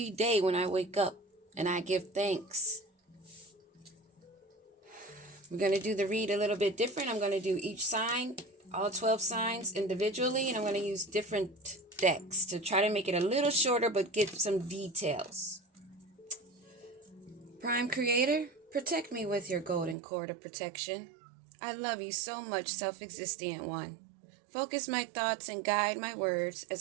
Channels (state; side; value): drops out; left; at 20.0 s